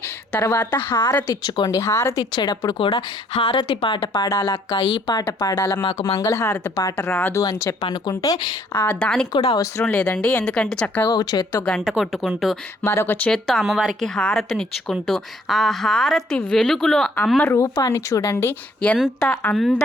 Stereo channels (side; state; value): both; normal; correlation 0.64